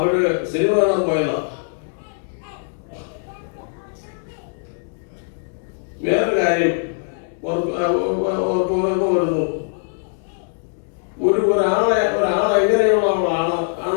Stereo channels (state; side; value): silent; right; digital silence